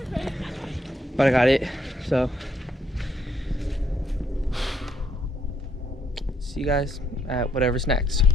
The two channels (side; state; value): both; normal; correlation 0.72